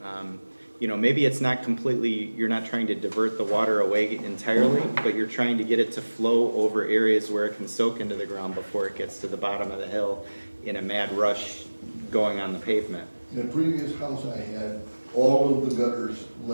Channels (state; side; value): inverted; both; correlation -1.00